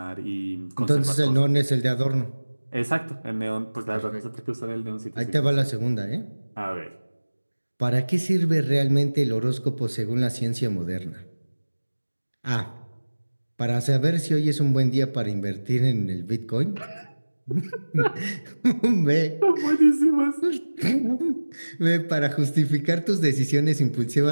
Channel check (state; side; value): inverted; both; correlation -1.00